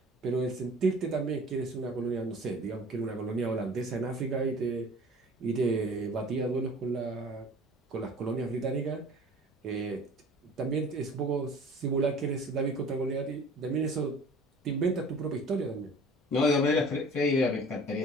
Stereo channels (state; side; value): normal; both; correlation 0.46